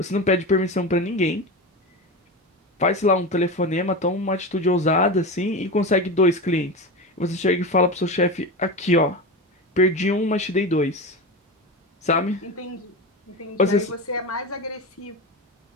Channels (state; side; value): normal; both; correlation 0.23